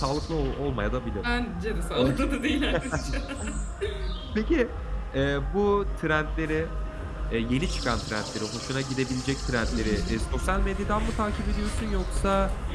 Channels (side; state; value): both; identical; correlation 1.00